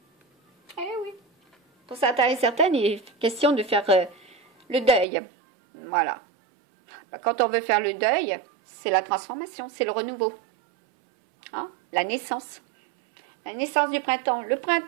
Eh oui. Pour certains et certaines, il est question de faire le deuil. Voilà. Quand on veut faire le deuil, c'est la transformation, c'est le renouveau. Hein? La naissance. La naissance du printemps. Le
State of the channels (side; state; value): left; drops out; at 5.1 s